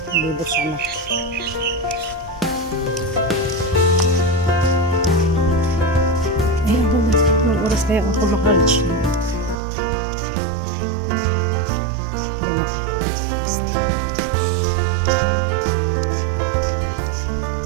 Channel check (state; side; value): drops out; left; at 9.6 s